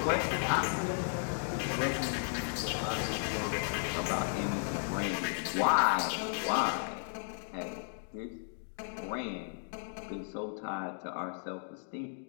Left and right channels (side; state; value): right; silent; digital silence